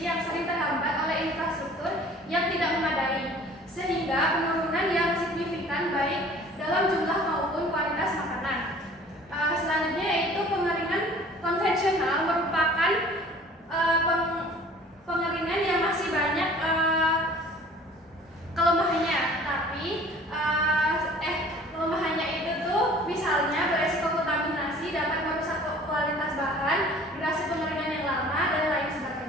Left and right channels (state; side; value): normal; both; correlation 0.49